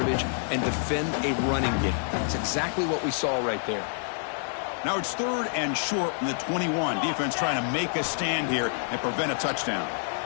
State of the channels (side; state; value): right; silent; digital silence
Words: and defend a running game. That's exactly what we saw right there. Now it's 3rd and short from the 21. Defense trying to make a stand here and prevent a touchdown.